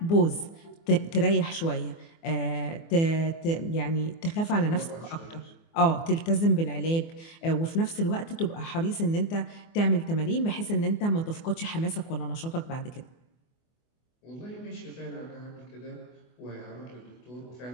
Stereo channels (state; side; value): late; right; 24 ms